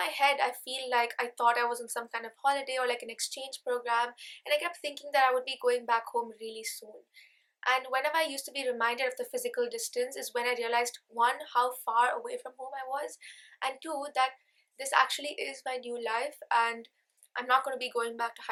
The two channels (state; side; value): identical; both; correlation 1.00